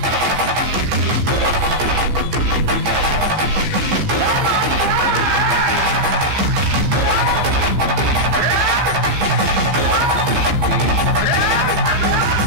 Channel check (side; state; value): left; late; 15 ms